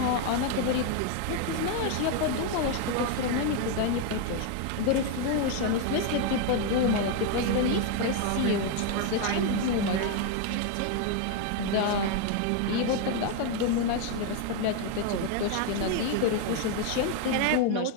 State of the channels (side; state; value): both; different; correlation 0.01